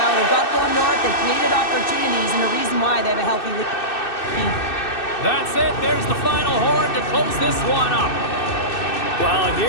They've got going north, they've created opportunities, and the reason why they have a healthy lead. That's it. There's the final horn to close this one up. Well,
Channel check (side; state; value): right; late; 2.6 ms